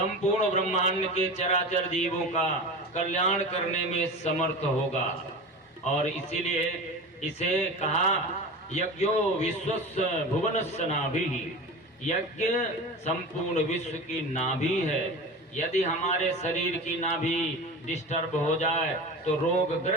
ब्रह्मांड के चराचर जीवों का कल्याण करने में समर्थ होगा। और इसीलिए इसे कहा यज्ञो विश्वस्य भुवनस्य नाभिः। यज्ञ संपूर्ण विश्व की नाभि है। यदि हमारे शरीर की नाभि डिस्टर्ब हो जाए तो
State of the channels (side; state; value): both; normal; correlation 0.30